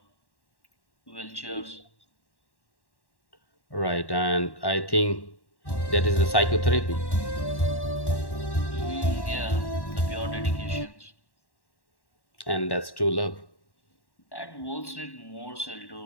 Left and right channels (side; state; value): right; late; 1.1 ms